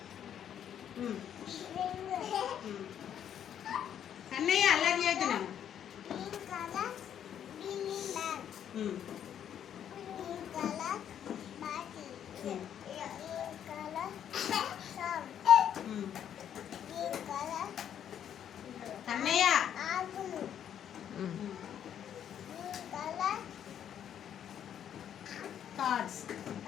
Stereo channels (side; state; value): right; quieter; 9.5 dB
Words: అన్నయ్య అల్లరి చేస్తున్నాను. అన్నయ్య కార్డ్స్.